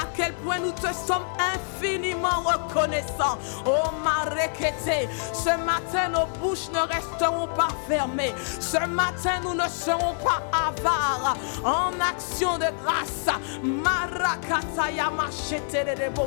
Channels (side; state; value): right; silent; digital silence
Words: quel point nous te sommes infiniment reconnaissants. Oh Marekete, ce matin nos bouches ne resteront pas fermées. Ce matin nous ne serons pas avares. En action de grâce. Marakataya machete de